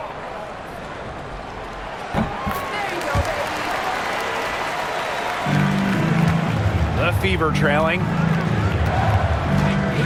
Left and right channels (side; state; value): both; identical; correlation 1.00